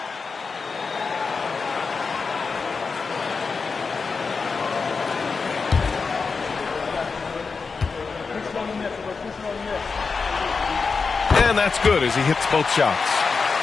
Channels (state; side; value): quieter; right; 4.8 dB